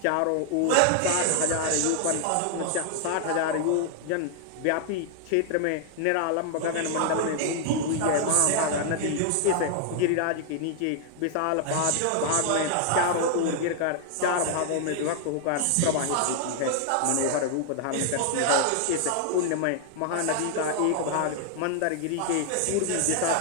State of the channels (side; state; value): both; different; correlation 0.00